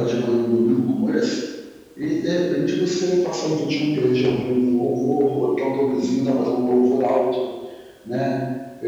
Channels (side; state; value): both; identical; correlation 1.00